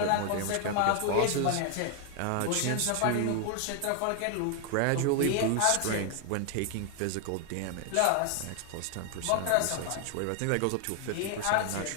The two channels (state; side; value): different; both; correlation 0.00